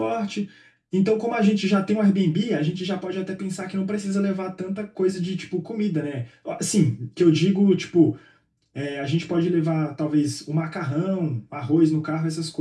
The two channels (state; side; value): identical; both; correlation 1.00